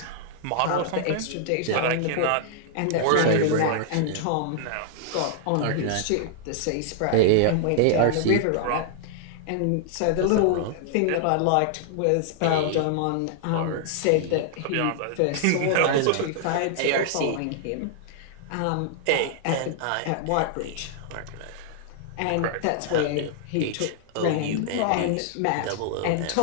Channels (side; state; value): both; different; correlation -0.01